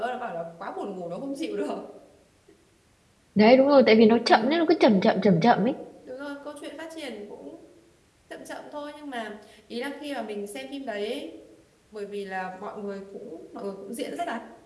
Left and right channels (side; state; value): both; identical; correlation 1.00